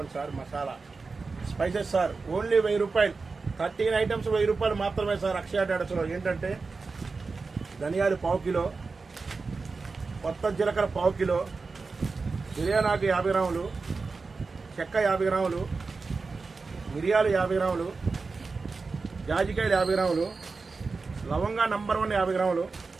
sir, masala spices sir, only 1000 రూపాయలు. 13 ఐటమ్స్ 1000 రూపాయలు మాత్రమే సార్ అక్షయ ట్రేడర్స్లో. ఏంటంటే ధనియాలు 1/4 కిలో, కొత్త జీలకర్ర 1/4 కిలో, బిర్యానాకు 50 గ్రాములు, చెక్క 50 గ్రాములు, మిరియాలు 50 గ్రాములు, జాజికాయలు 50 గ్రాములు, లవంగా నంబర్ 1 50 గ్రాములు,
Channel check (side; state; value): left; quieter; 4.3 dB